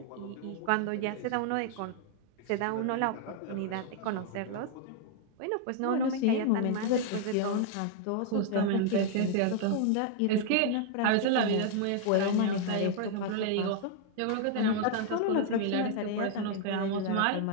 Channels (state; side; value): different; both; correlation 0.00